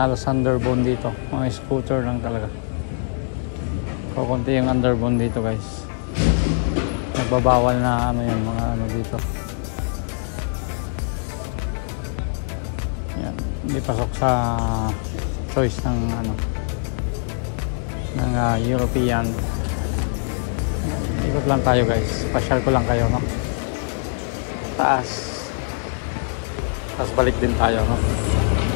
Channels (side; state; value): right; silent; 64 dB below the other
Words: halos underbone dito. Mga scooter lang talaga. Kukunti yung underbone dito guys. Nagbabawal na ano yan, mga ano dito. Yan, hindi pasok sa choice ng ano, ng European. Ikot lang tayo guys. Pasyal ko lang kayo, no? Taas. Tapos balik din tayo, no?